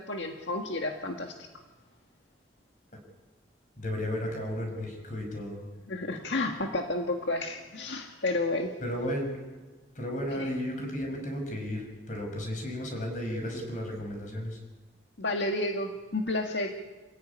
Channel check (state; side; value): normal; both; correlation 0.24